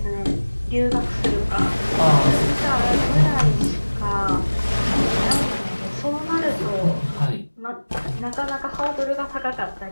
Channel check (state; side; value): inverted; both; correlation -1.00